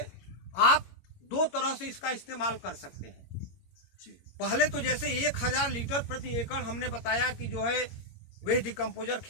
आप 2 तरह से इसका इस्तेमाल कर सकते हैं जी। पहले तो जैसे 1000 लीटर प्रति एकड़ हमने बताया कि जो है वेस्ट डिकम्पोजर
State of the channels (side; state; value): right; late; 22 ms